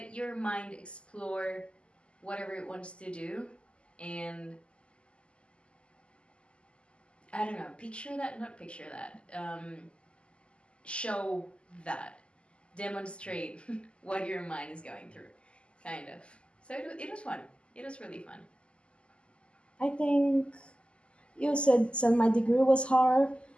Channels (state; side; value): late; right; 0.054 ms